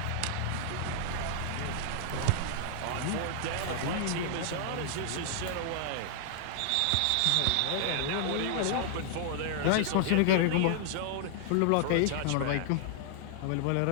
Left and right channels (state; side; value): different; both; correlation -0.01